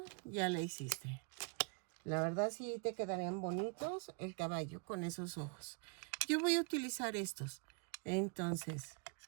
ya la hiciste. La verdad sí te quedarían bonitos el caballo con esos ojos. Yo voy a utilizar estos. Entonces,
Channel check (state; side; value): quieter; left; 34.6 dB